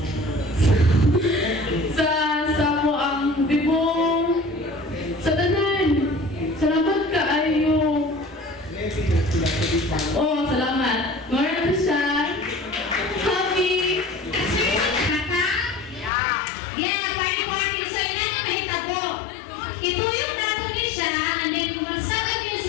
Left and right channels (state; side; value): drops out; right; at 16.1 s